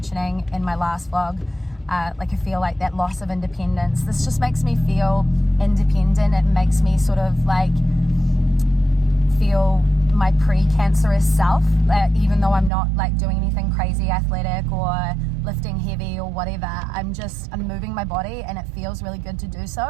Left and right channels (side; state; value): left; drops out; at 12.7 s